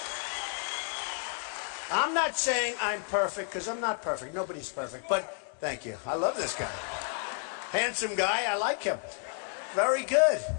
I'm not saying I'm perfect because I'm not perfect. Nobody's perfect. But thank you. I love this guy. Handsome guy. I like him. Very good.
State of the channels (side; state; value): right; silent; 55 dB below the other